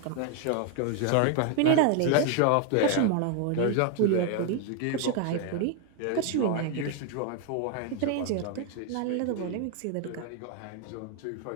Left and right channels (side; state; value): both; different; correlation 0.01